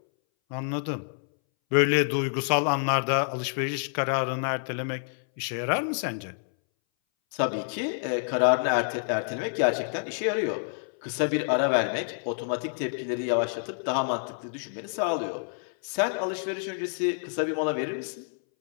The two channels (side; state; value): right; silent; 59 dB below the other